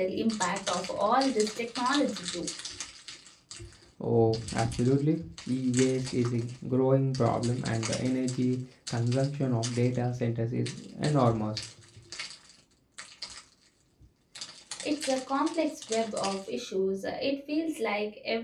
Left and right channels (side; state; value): both; identical; correlation 1.00